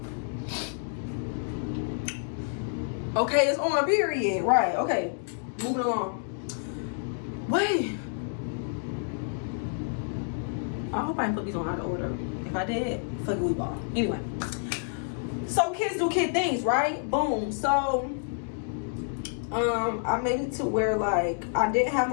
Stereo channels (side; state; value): right; silent; digital silence